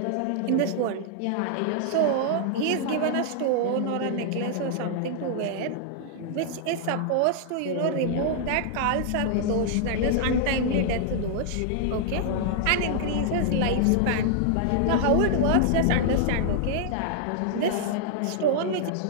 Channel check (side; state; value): both; different; correlation -0.01